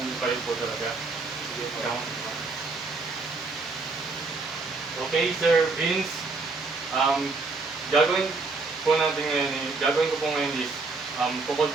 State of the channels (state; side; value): quieter; left; 3.8 dB